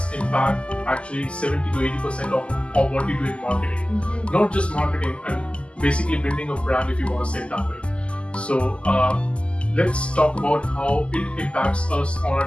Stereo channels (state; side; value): late; right; 0.055 ms